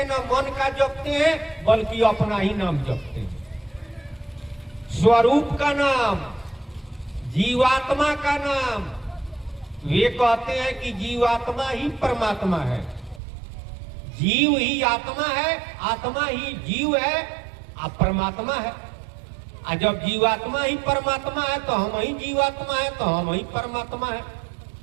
न मन का जपते हैं, बल्कि अपना ही नाम जपते हैं। स्वरूप का नाम, जीवात्मा का नाम। वे कहते हैं कि जीवात्मा ही परमात्मा है, जीव ही आत्मा है, आत्मा ही जीव है, और परमात्मा है। और जब जीवात्मा ही परमात्मा है तो हम ही जीवात्मा है, तो हम ही परमात्मा है।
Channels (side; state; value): left; drops out; at 13.2 s